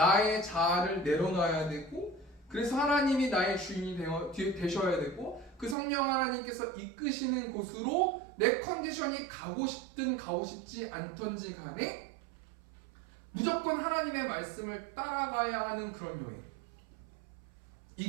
자아를 내려놔야 되고 그래서 하나님이 나의 주인이 되셔야 되고 그 성령 하나님께서 이끄시는 곳으로 내 컨디션이 가고 싶든 가고 싶지 않던지 간에 무조건 하나님의 말씀을 따라가야 하는 그런 여행.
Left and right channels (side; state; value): left; drops out; at 5.8 s